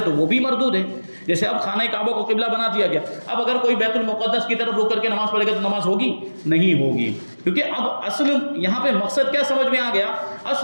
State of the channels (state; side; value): inverted; both; correlation -1.00